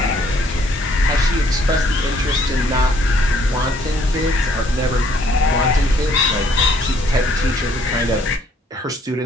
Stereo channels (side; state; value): both; normal; correlation 0.64